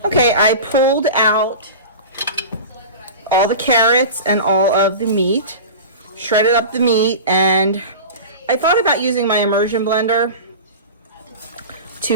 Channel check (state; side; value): inverted; both; correlation -0.31